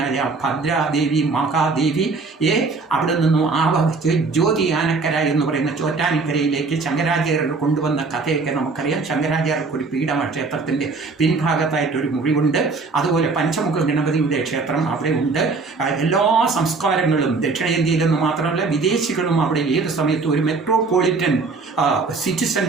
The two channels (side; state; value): left; quieter; 4.1 dB